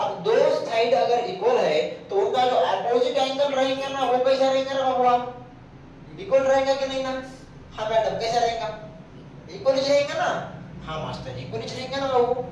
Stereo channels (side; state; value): both; identical; correlation 1.00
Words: दो साइड अगर इक्वल है तो उनका जो अपोजिट एंगल रहेगा ना वो कैसा रहेगा ना बाबू, इक्वल रहेगा कि नहीं ना। हाँ मैडम कैसा रहेगा, इक्वल ही रहेगा ना। हाँ मास्टर इक्वल ही रहेगा ना बाबू,